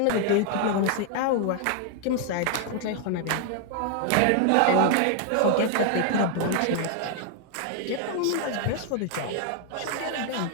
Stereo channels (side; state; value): both; different; correlation 0.00